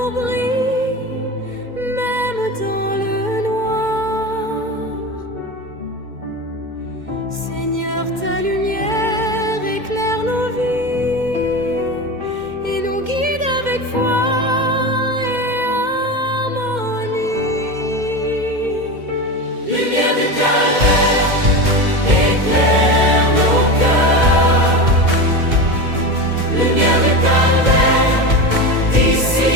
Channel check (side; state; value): left; late; 2.1 ms